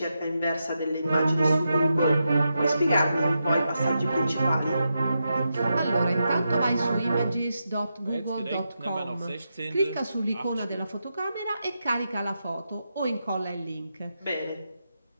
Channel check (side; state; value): both; inverted; correlation -0.86